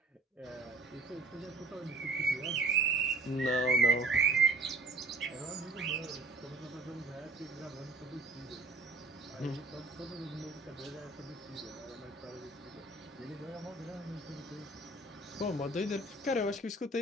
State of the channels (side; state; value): left; quieter; 3.1 dB